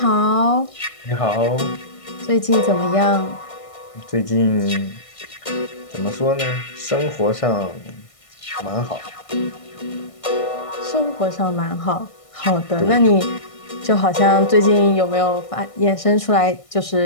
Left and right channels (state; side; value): late; right; 1.6 ms